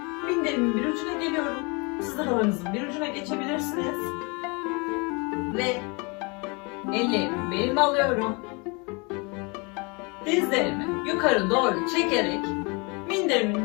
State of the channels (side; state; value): right; quieter; 30.1 dB